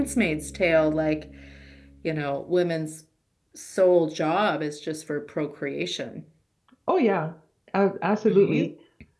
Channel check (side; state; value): both; identical; correlation 1.00